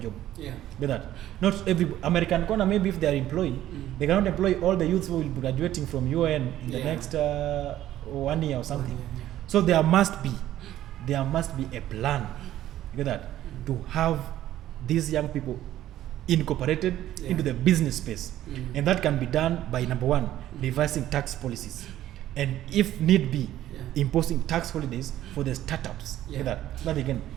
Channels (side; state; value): left; quieter; 13.1 dB